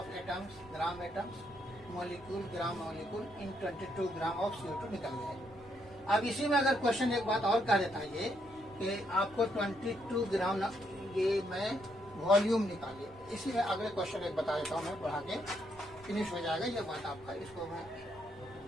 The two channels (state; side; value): normal; both; correlation 0.75